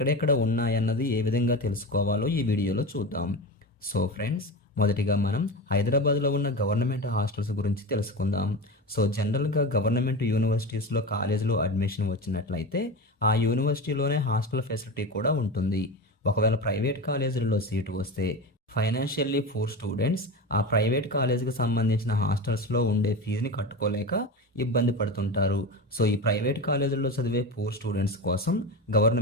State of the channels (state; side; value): normal; both; correlation 0.24